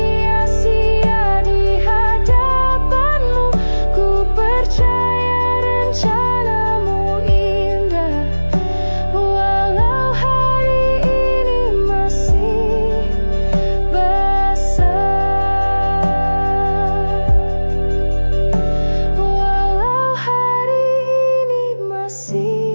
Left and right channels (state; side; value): inverted; both; correlation -1.00